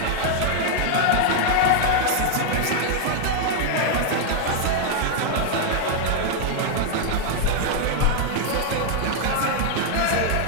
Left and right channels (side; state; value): both; different; correlation 0.00